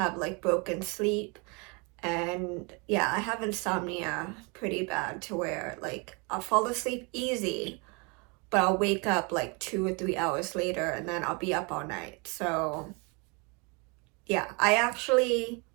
like broken sleep. And yeah, I have insomnia pretty bad to where like I'll fall asleep easy, but I'll wake up like 2 or 3 hours later and then I'll be up all night. So yeah, I actually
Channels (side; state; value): left; quieter; 31.0 dB